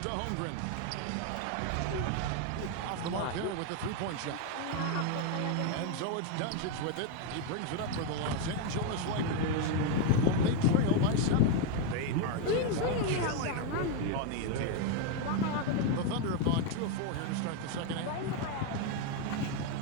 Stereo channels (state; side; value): different; both; correlation 0.01